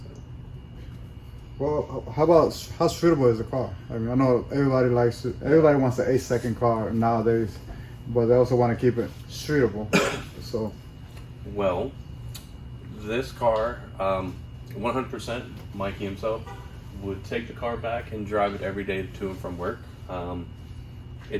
Well, how streetable is the car? I mean, I know everybody wants an 8-second car nowadays, but they also want to keep it streetable. So, well, this car, 100%, Mikey himself would take the car back and drive it every day to and from work.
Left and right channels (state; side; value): identical; both; correlation 1.00